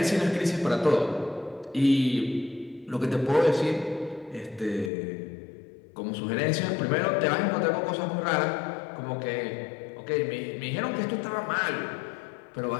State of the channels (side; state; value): right; drops out; at 4.9 s